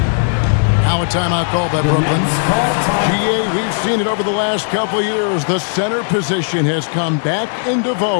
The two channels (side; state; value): right; silent; digital silence